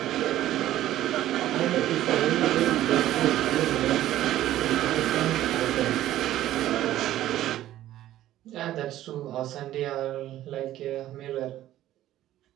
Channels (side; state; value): left; quieter; 13.6 dB